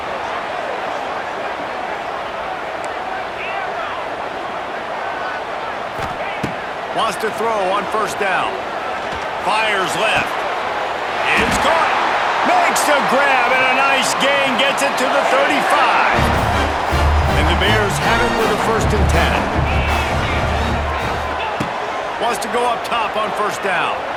Wants to throw on first down. Fires left. It's caught. Makes the grab, and a nice gain. Gets it to the 35. And the Bears have it with a 1st and 10. Wants to go up top on first down.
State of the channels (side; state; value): both; identical; correlation 1.00